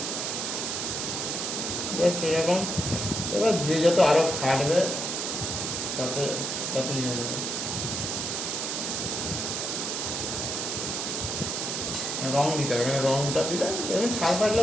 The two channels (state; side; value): noise; right; hiss, 2 dB below the sound